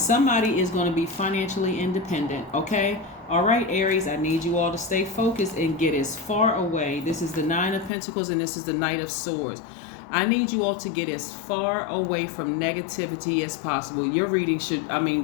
is going to be financially independent, okay? All right, Aries, I need you all to stay focused and get as far away. This is the Nine of Pentacles and this is the Knight of Swords. I need you all to get as far away from negativity as possible. Your reading should,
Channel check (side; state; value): right; drops out; at 7.9 s